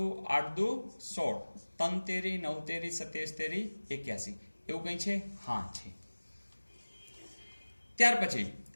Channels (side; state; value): both; inverted; correlation -1.00